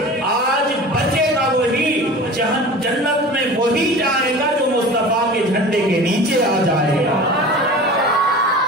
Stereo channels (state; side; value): normal; both; correlation 0.37